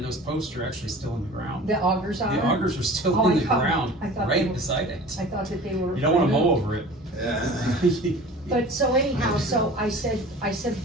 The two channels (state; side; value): normal; both; correlation 0.41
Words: those posts are actually still in the ground. The augers are? The augers are still Oh, in I the thought- ground, I thought they right were- beside it. I thought that they were. You don't wanna mow over it. Yeah. But so anyhow, so I said,